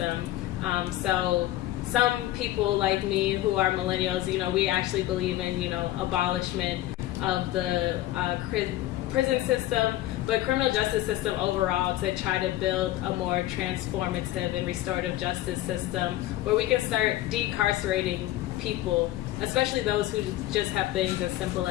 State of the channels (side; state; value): right; quieter; 15.3 dB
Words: So some people like me who are millennials, we actually believe in abolishment of the prison system, but criminal justice system overall, to try to build a more transformative and restorative justice system where we can start decarcerating people, especially those who just have things as simple